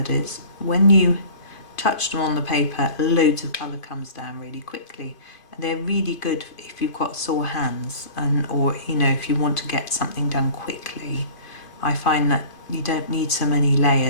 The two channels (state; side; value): late; right; 2.5 ms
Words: is. When you touch them on the paper, loads of colour comes down really quickly. And they're really good if you've got sore hands, or you know, if you want to get something done quickly. I find that you don't need so many